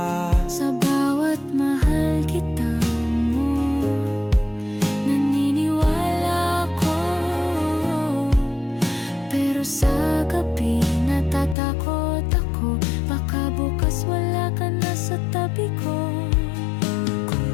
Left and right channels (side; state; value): right; drops out; at 11.6 s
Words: Sa bawat mahal kita mo, naniniwala ako. Pero sa gabi natatakot ako, baka bukas wala ka na sa tabi ko. Kung